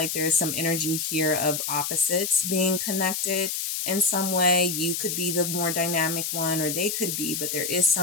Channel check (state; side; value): noise; left; hiss, 2 dB below the sound